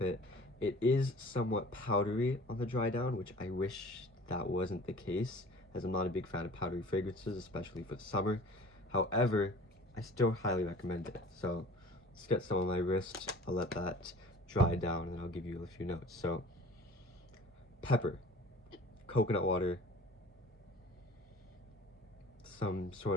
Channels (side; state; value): both; normal; correlation 0.46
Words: It is somewhat powdery on the dry down, which I wish that wasn't the case, as I'm not a big fan of powdery fragrances, especially for the summer. However, I still highly recommend it. So let's get some on my wrist. I'll let that dry down and I'll give you a few notes. So pepper, coconut water, some